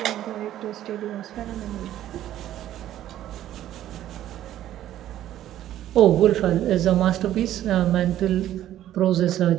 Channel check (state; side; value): quieter; left; 12.5 dB